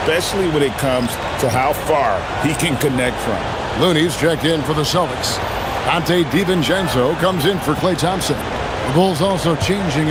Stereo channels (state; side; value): identical; both; correlation 1.00